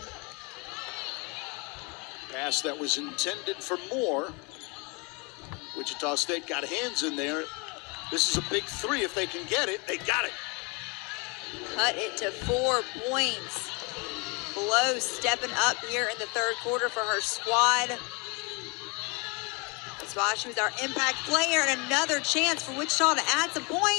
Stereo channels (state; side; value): quieter; right; 30.2 dB